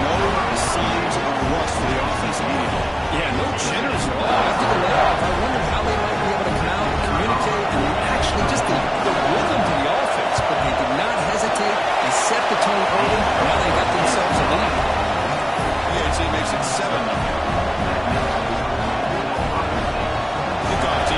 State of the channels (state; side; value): identical; both; correlation 1.00